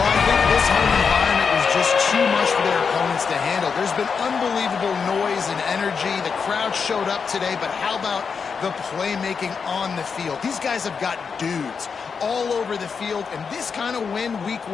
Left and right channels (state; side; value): quieter; right; 5.8 dB